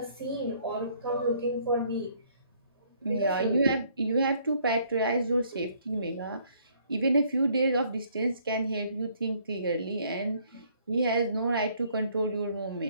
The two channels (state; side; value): inverted; both; correlation -0.64